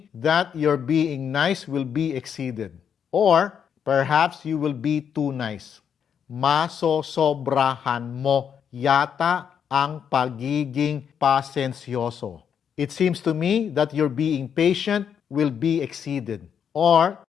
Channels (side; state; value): right; quieter; 7.8 dB